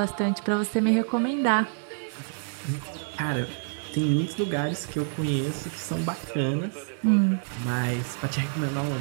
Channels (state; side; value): silent; left; 57 dB below the other